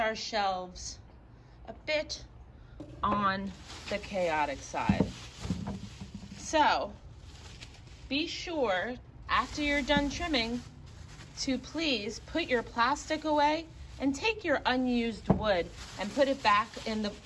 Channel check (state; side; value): identical; both; correlation 1.00